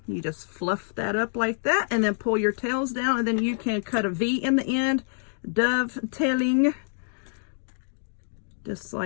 you just fluff that up like that, and then pull your tails down, and then you can cut a V in the end, dovetailing, just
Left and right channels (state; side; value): silent; right; digital silence